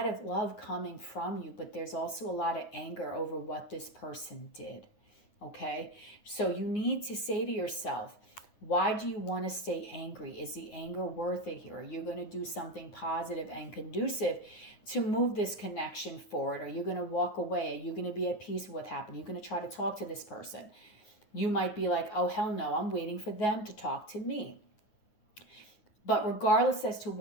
of love coming from you, but there's also a lot of anger over what this person did. Okay? So you need to say to yourself, why do you want to stay angry? Is the anger worth it here? Are you going to do something positive and conducive to move this connection forward? Are you going to walk away? Are you going to be at peace with what happened? Are you going to try to talk to this person? You might be like, oh, hell no, I'm waiting for them to talk to me. But regardless as to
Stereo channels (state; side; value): late; right; 9.6 ms